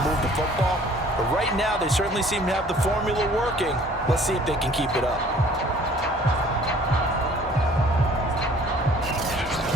move the football. But right now, they certainly seem to have the formula working. Let's see if they can keep it up.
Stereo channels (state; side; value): normal; both; correlation 0.54